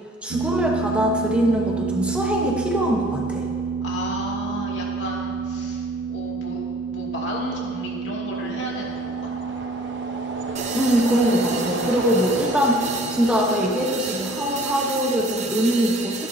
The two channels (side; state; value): both; normal; correlation 0.52